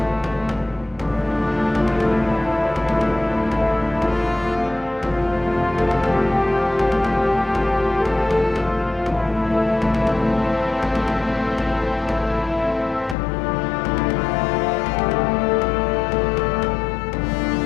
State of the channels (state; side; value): drops out; right; at 13.2 s